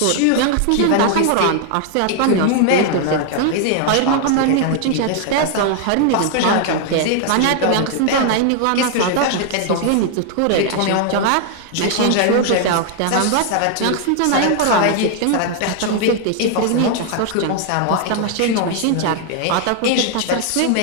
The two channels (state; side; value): different; both; correlation 0.00